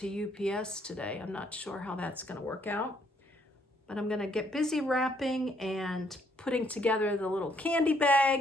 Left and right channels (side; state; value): both; normal; correlation 0.69